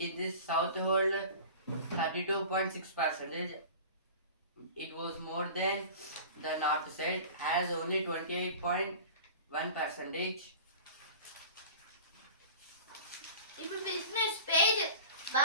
In this south hold 32.6%. It was more than the north side, has only 28.1%. ఇప్పుడు business page.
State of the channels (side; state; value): both; inverted; correlation -0.39